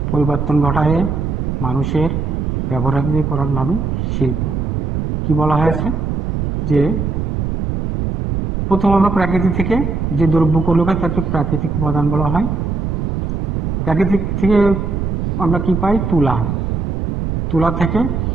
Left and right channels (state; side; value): noise; right; rumble, 1 dB below the sound